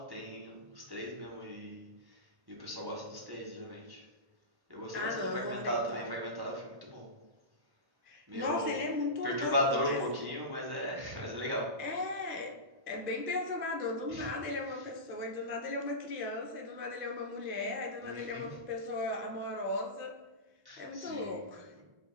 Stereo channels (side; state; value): left; late; 1.1 ms